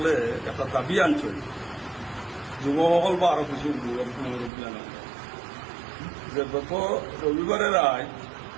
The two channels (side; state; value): left; drops out; at 4.5 s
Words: একটা দাবি আনছে। যুৱকসকল বা আরো কিছু মুরব্বী আনা যে গত রবিবারে রায়